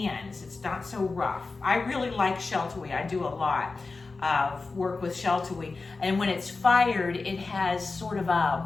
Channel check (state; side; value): quieter; right; 3.9 dB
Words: It's not so rough. I really like Sheltawee. I do a lot of work with Sheltawee. And when it's fired, it has sort of